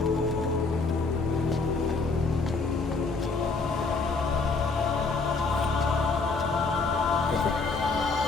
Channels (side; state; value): right; quieter; 4.1 dB